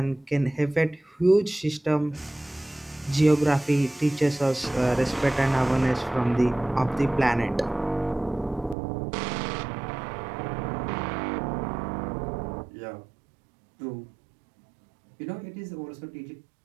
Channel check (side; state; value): left; drops out; at 8.8 s